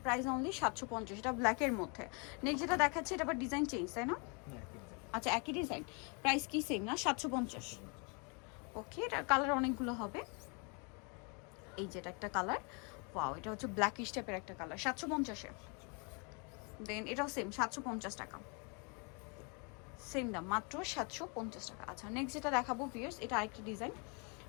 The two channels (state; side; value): quieter; right; 34.2 dB